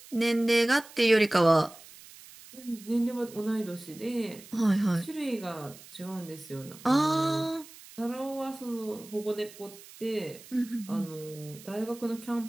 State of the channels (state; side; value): noise; right; hiss, 19 dB below the sound